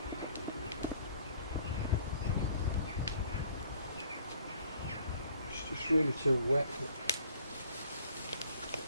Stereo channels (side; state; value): both; inverted; correlation -0.57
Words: It's just really too wet.